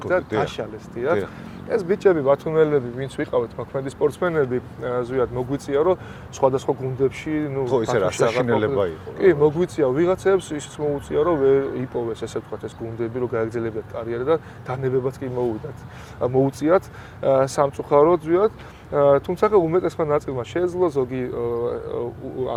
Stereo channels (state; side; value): identical; both; correlation 1.00